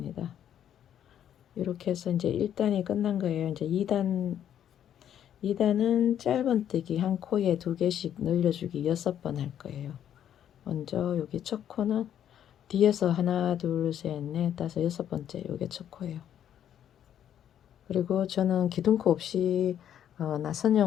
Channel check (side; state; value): right; quieter; 10.1 dB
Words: 이렇게 해서 이제 1단이 끝난 거예요. 이제 2단은 짧은뜨기 한 코에 2개씩 늘려주기 6번 할 거예요. 먼저 여기 첫 코는 뒤에서 하나 둘 셋 넷 다섯 6번째 요게 첫 코예요. 그리고 저는 기둥코 없이